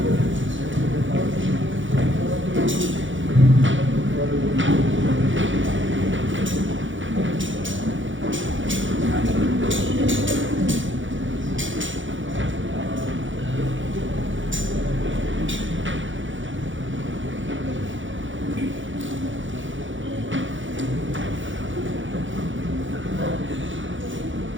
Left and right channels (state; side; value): late; left; 0.56 ms